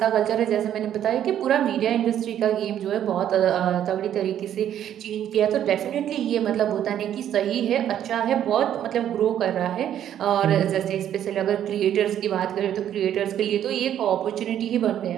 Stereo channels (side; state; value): left; quieter; 10.5 dB